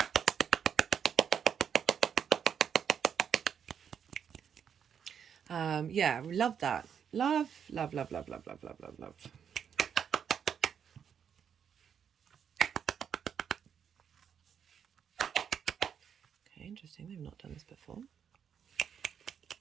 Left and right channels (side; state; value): left; quieter; 7.8 dB